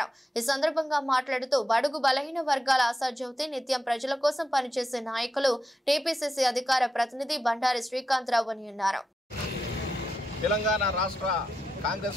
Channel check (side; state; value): both; normal; correlation 0.87